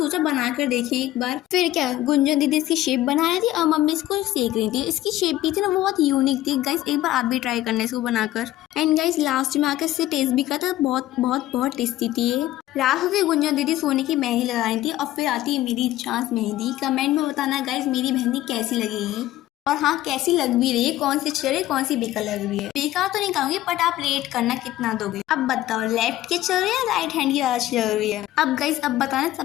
बना कर देखिए एक बार। फिर क्या, गुंजन दीदी इसकी शेप बना रही थी और मम्मी इसको सेक रही थी। इसकी शेप भी थी ना, वो बहुत यूनिक थी गाइस। एक बार आप भी ट्राई करना इसको बनाकर। एंड गाइस लास्ट में आकर इससे टेस्ट भी करता, बहुत बहुत बहुत टेस्टी थी ये। लास्ट में गुंजन दीदी सोने की मेहंदी लगाई थी और फिर आती है मेरी चांस मेहंदी। कमेंट में बताना गाइस मेरी मेहंदी कैसी लगेगी, और हाँ कैसी लग भी रही है, कौन सी अच्छी लग रही है, कौन सी बेकार लग रही है। बेकार तो नहीं कहूंगी, बट आप रेट करना कितना दोगे। अब बताओ लेफ्ट की चल रही है, राइट हैंड की अच्छी लग रही है। अब गाइस अब बताना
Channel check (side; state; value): right; quieter; 14.8 dB